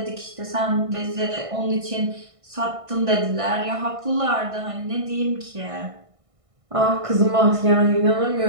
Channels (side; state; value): left; late; 1.6 ms